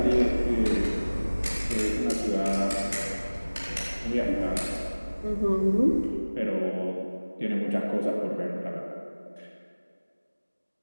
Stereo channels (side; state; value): both; inverted; correlation -1.00